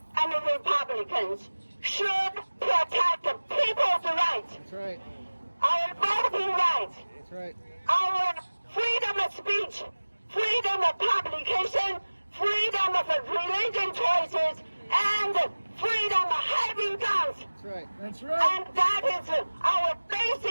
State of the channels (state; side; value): inverted; both; correlation -1.00